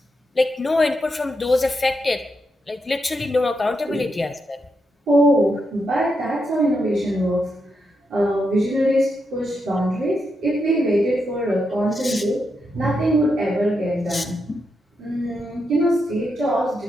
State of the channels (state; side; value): normal; both; correlation 0.83